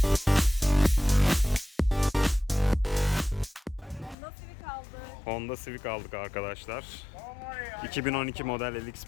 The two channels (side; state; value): right; drops out; at 4.2 s